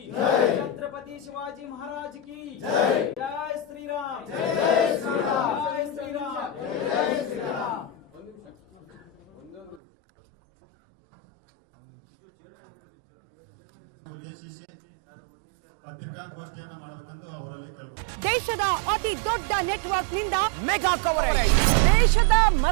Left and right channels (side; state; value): left; drops out; at 9.8 s